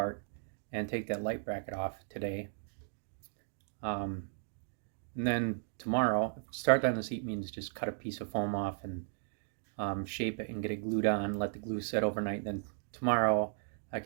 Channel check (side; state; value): left; silent; digital silence